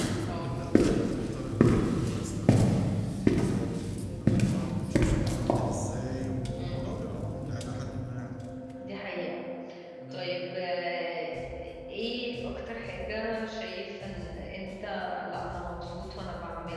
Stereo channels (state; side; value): identical; both; correlation 1.00